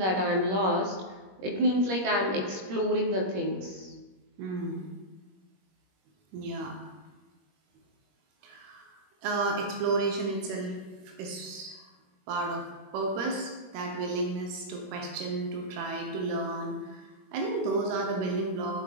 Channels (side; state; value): left; late; 21 ms